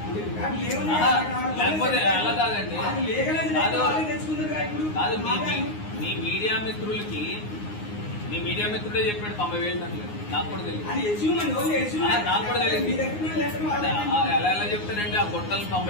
లేకపోతే అలా కాదండి. కాదు మీ మీడియా మిత్రులకి, మీ మీడియా మిత్రుడే చెప్పాడు 90,000 టన్నులు. నాకు కూడా తెలియదు. ఎలా చెప్తానండి ఆ గుట్టలు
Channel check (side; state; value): right; late; 9.6 ms